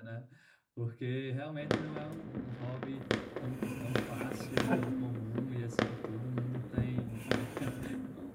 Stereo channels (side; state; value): both; identical; correlation 1.00